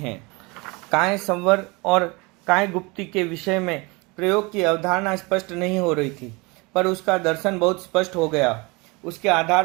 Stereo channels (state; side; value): quieter; left; 26.5 dB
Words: काय संवर और काय गुप्ति के विषय में प्रयोग की अवधारणा स्पष्ट नहीं हो रही थी, पर उसका दर्शन बहुत स्पष्ट हो गया। उसके